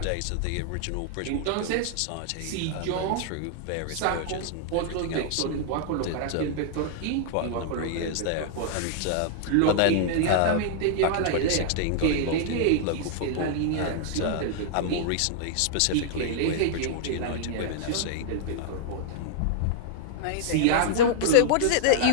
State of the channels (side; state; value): both; different; correlation -0.01